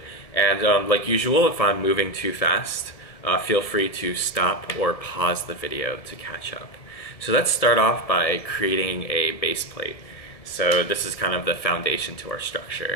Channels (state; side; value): late; right; 1.6 ms